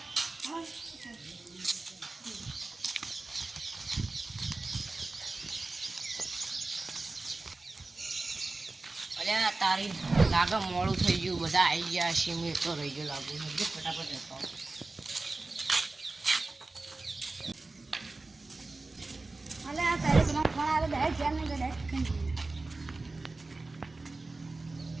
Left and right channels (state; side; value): quieter; left; 3.4 dB